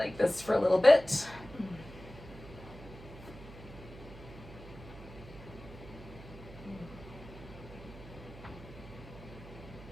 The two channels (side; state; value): right; noise; hum, 16 dB below the sound